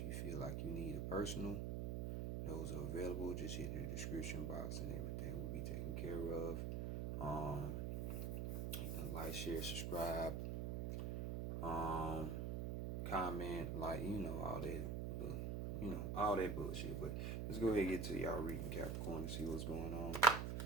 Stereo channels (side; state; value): right; noise; hum, 1 dB below the sound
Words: you feel like you need a personal, those are available. Just hit the description box and everything will be taken care of. Like, share, subscribe, comment, all that bullshit. But let's go ahead and get to y'all reading Capricorn and see what's going on